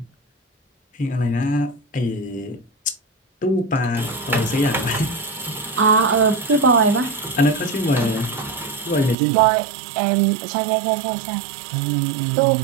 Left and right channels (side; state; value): left; drops out; at 9.2 s